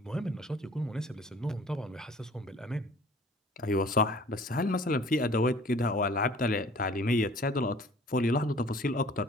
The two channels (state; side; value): normal; both; correlation 0.51